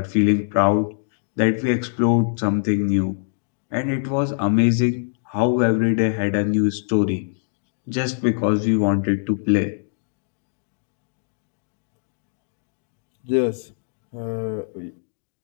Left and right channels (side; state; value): right; silent; digital silence